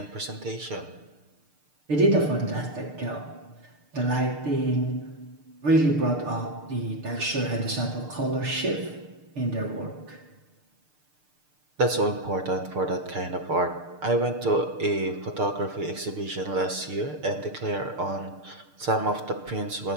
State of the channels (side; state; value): left; late; 6.7 ms